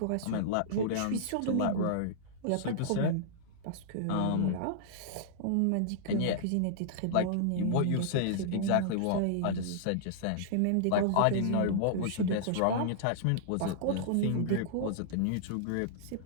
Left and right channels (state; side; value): different; both; correlation -0.01